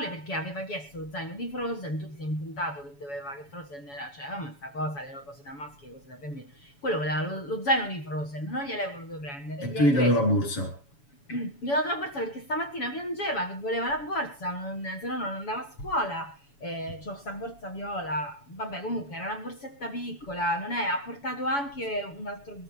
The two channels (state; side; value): late; right; 7.1 ms